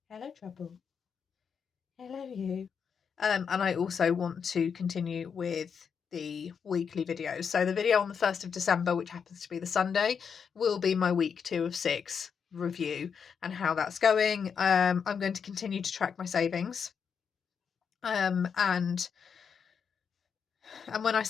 hello trouble, hello you, and I also want to continue with the weekly videos. So the video on the 1st of December, which happens to be the Sunday, will be my week 2 of 6 review and how that's going. I'm going to continue to track my savings, and when I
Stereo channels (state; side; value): quieter; right; 6.6 dB